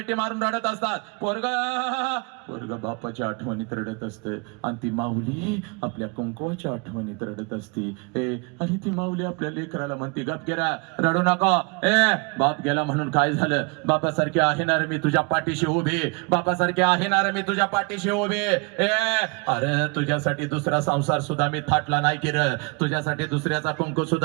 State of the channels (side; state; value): left; quieter; 32.7 dB